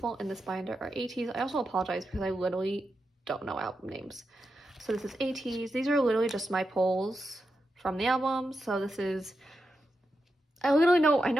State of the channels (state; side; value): normal; both; correlation 0.88